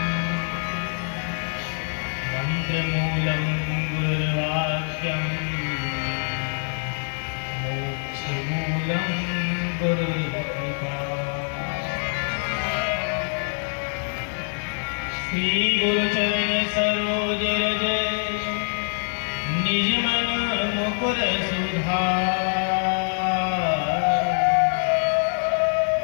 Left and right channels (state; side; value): silent; right; 62 dB below the other